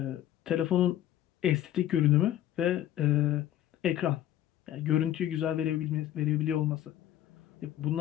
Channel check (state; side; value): quieter; right; 12.3 dB